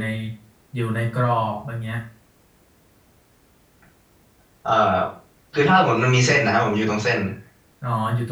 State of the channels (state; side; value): identical; both; correlation 1.00